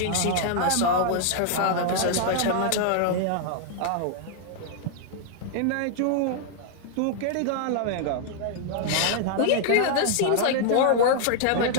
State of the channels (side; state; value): both; different; correlation -0.01